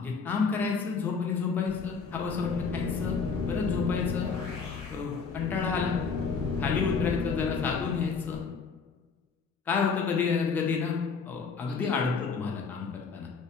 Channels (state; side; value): quieter; right; 5.3 dB